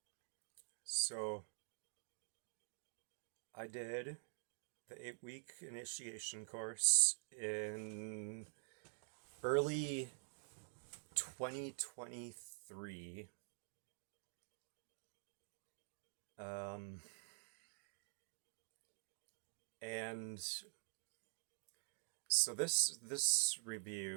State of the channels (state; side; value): silent; left; digital silence